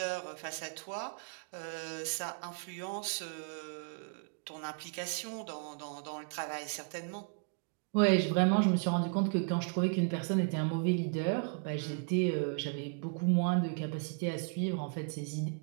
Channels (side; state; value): left; quieter; 39.6 dB